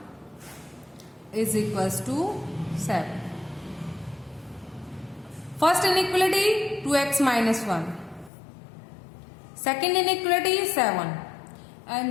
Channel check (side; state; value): right; drops out; at 8.3 s